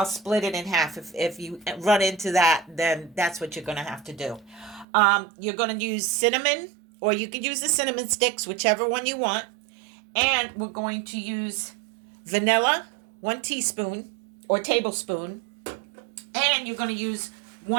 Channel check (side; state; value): left; drops out; at 4.9 s